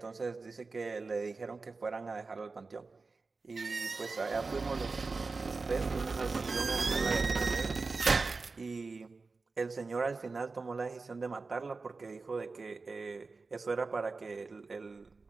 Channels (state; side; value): quieter; left; 4.0 dB